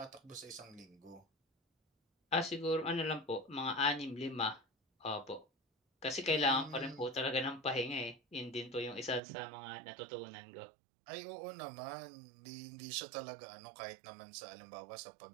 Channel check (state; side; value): drops out; left; at 9.2 s